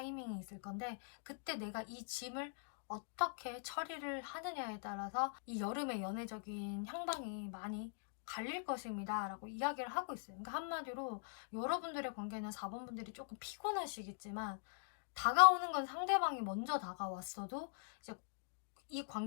있을 건데, 그때 내가 이 짐을 어떻게 처리를 하느냐에 따라서 이 여름의 연애적인 향방이 많이 갈릴 것입니다 라고 이야기를 하고 있어요. 그러니까 한마디로 여러분들의 관계는 4번 분들이 조금 피곤하시겠지만, 다가오는 건 상대방이 먼저 다가왔어도 이제 이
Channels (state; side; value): silent; right; digital silence